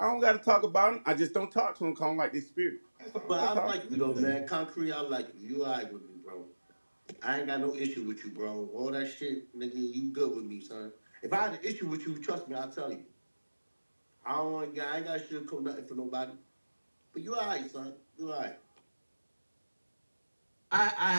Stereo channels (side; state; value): both; inverted; correlation -1.00